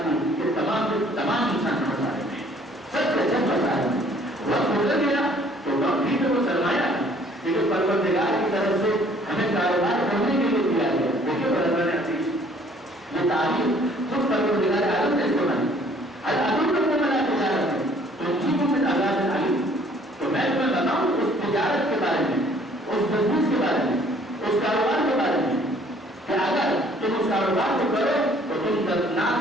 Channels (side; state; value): both; normal; correlation 0.58